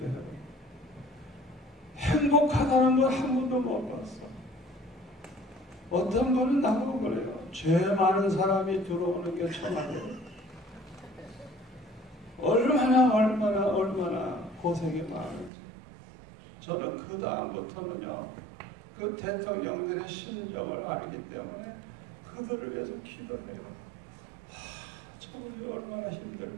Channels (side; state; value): left; drops out; at 15.5 s